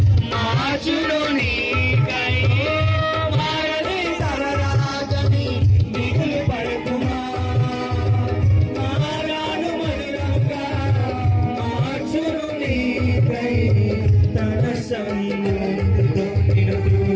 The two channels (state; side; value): identical; both; correlation 1.00